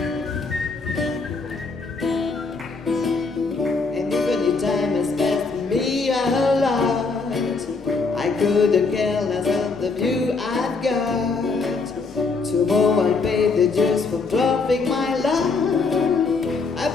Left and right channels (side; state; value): right; quieter; 4.2 dB